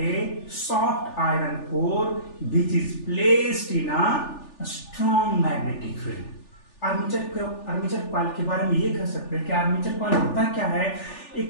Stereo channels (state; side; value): late; right; 3.4 ms